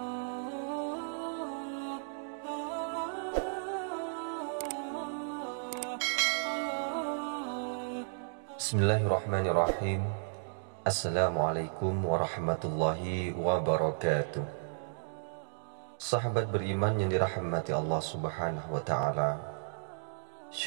Bismillahirrahmanirrahim. Assalamualaikum warahmatullahi wabarakatuh. Sahabat beriman yang dirahmati Allah subhanahu wa ta'ala,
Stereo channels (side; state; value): left; silent; digital silence